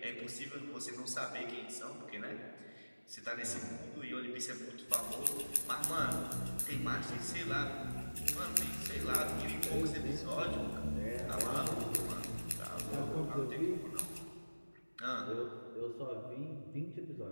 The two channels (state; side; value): inverted; both; correlation -1.00